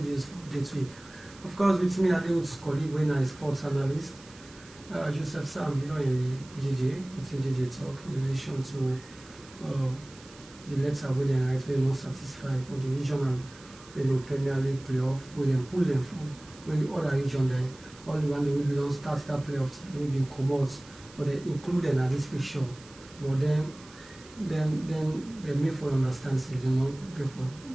for day 3. Of course, with me, I deal with colleague when I sports analyst, Joseph Sam, in JJ, within JJ talk in relation to the letter where they write we're not satisfied for the regional, Premier League playoff, where they pull them from, when the other region there, all the one they will be don't start that playoffs, they will be commodities, but they include them at this picture, but then they may for understand, so they not go for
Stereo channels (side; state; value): right; noise; hiss, 22 dB below the sound